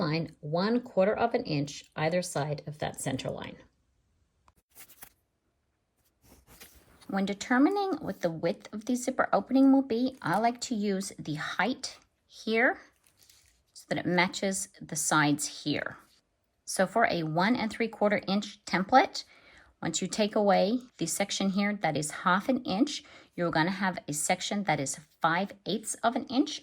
1/4 of an inch either side of that center line. When determining what the width of the zipper opening will be, I like to use the height here so that it matches the sides here. So for a 1 3/4 inch template, once you take away the section here that is 1/2 an inch, you're going to have a section that is 5/8 of an inch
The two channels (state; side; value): identical; both; correlation 1.00